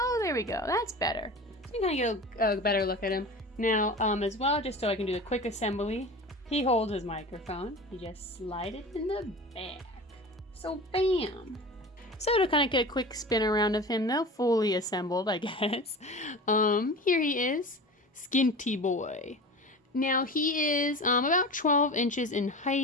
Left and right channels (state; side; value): normal; both; correlation 0.33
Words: there we go. That's better. So you can kind of get a better look at him. Now, as well, just so I can do the quick assembly, he holds his microphone. You just slide it in the back. So, bam. So to kind of get a quick spin around of him, though, fully assembled, I guess. Here he is, Skinty Boy. Now he is about 12 inches in